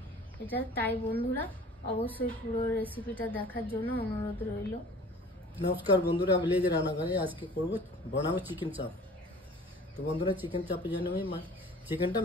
এটা। তাই বন্ধুরা অবশ্যই পুরো রেসিপিটা দেখার জন্য অনুরোধ রইল। নমস্কার বন্ধুরা, ভিলেজ রান্নাঘরে আজকে বানাবো চিকেন চাপ। তো বন্ধুরা, চিকেন চাপের জন্য আমি চিকেনটা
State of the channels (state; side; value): normal; both; correlation 0.46